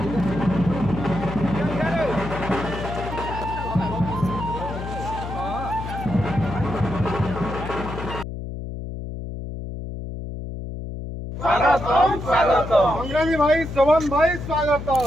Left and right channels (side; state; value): left; noise; hum, 7 dB below the sound